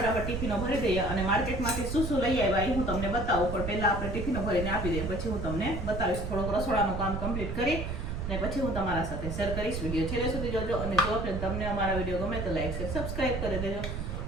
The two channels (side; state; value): right; noise; rumble, 4 dB below the sound